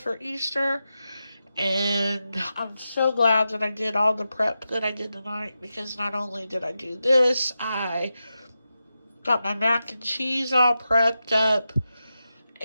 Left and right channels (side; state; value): both; inverted; correlation -0.90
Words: Easter. And I'm so glad that I did all the prep that I did tonight, because not only did I do this, I got my mac and cheese all prepped up,